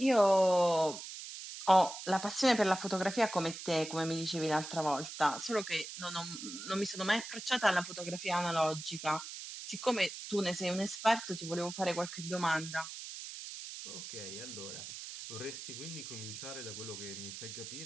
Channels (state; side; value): noise; right; hiss, 10 dB below the sound